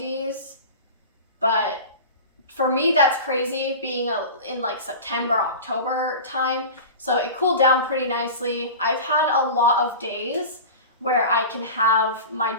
but for me, that's crazy being in like September, October time. So it cooled down pretty nicely. I've had a lot of days where I can have my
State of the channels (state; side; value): inverted; both; correlation -0.32